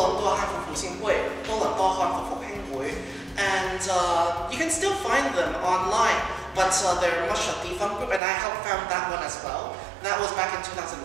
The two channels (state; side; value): drops out; left; at 8.2 s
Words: 多汉服复兴会, 多伦多汉服复兴会, and you can still find them online, but they're much a defunct group, and I have found that one as well. That was back in